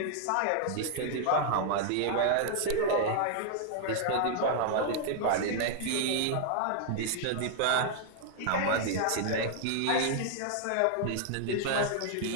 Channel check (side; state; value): both; different; correlation -0.01